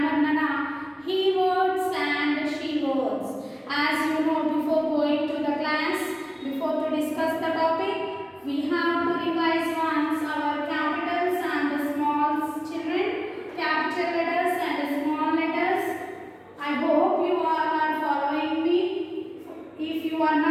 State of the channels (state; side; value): identical; both; correlation 1.00